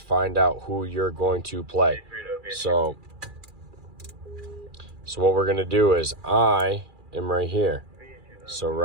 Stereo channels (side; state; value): left; late; 2.4 ms